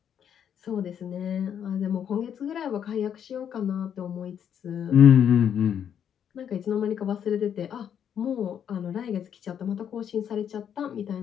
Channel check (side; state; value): right; quieter; 8.7 dB